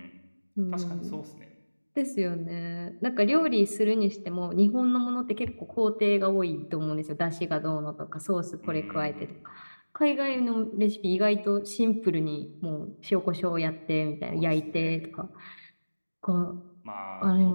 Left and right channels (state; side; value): inverted; both; correlation -1.00